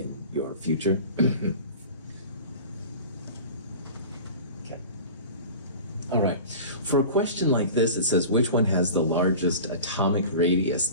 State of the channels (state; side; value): inverted; both; correlation -0.36